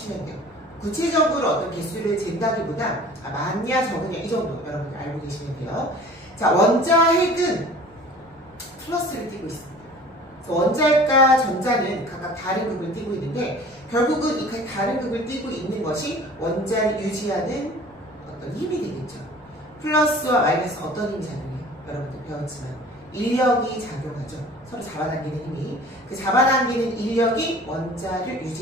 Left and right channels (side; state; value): left; noise; rumble, 29 dB below the sound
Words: 돼요. 구체적으로 어떤 개수를 잰다기보다 많냐 적으냐 이 정도 여러분들 알고 계시면 돼요. 자, 원자핵은 플러스를 띄고 있습니다. 그래서 원자핵과 전자는 각각 다른 극을 띄고 있는데, 결국은 이 다른 극을 띄고 있는 것이 원자를 유지하는 어떤 힘이 되겠죠. 플러스와 마이너스 어떤 힘이 작용해요? 여러분들 배웠지만 인력이 작용하죠. 서로 잡아당기는 힘이. 그 잡아당기는 인력이 원자를